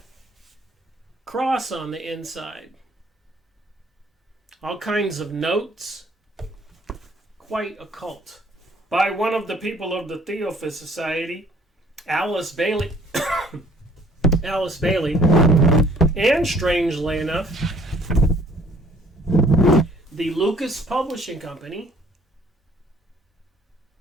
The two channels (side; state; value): both; normal; correlation 0.58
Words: cross on the inside. All kinds of notes. Quite occult. By one of the people of the Theophist Society, Alice Bailey. Alice Bailey. And strangely enough, the Lucas Publishing Company,